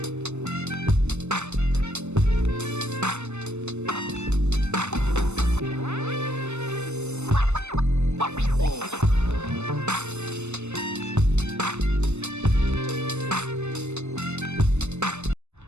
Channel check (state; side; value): late; left; 0.82 ms